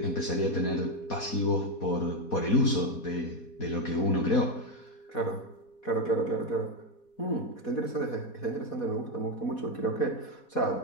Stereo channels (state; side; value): late; right; 4.2 ms